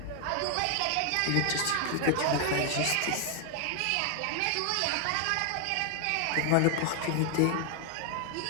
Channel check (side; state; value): both; different; correlation 0.00